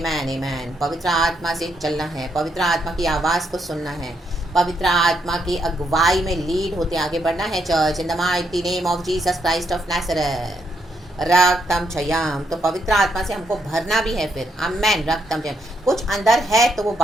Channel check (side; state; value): both; normal; correlation 0.77